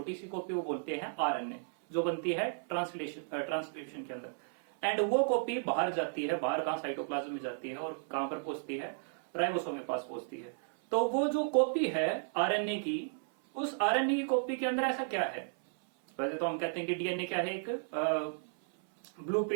सी कॉपी वो बोलते हैं आरएनए, जो बनती है ट्रांसक्रिप्शन के अंदर. एंड वो कॉपी बाहर जाती है, बाहर कहां, साइटोप्लाज्म में जाती है और कहां पर पहुंचती है, राइबोसोम के पास पहुंचती है. तो वो जो कॉपी है आरएनए की, उस आरएनए की कॉपी के अंदर ऐसा क्या है. वैसे तो हम कहते हैं कि डीएनए क्या है, एक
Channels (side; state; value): left; silent; 55 dB below the other